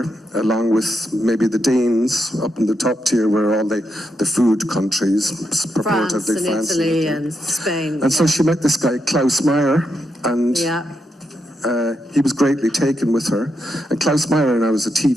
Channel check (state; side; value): normal; both; correlation 0.83